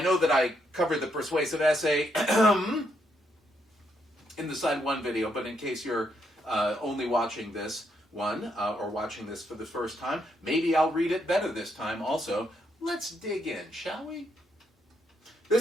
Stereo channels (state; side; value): normal; both; correlation 0.77